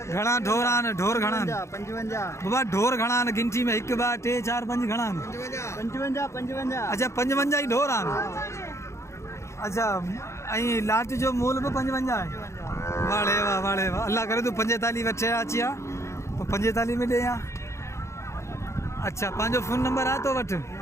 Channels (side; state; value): right; late; 0.14 ms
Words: घणा ढोरान ढोर घणान 55 बाबा ढोर घणान गिनती में 1 2 3 4 5 घणान। 55 अच्छा 55 ही ढोर आन। अच्छा ऐं लाट जो मूल पे 55 है। वाड़े वाह अल्लाह करे तू 45 वठे अची आ तो 45 में ॾे आ। अच्छा पंहिंजो फ़ोन नंबर आहे तो वटि?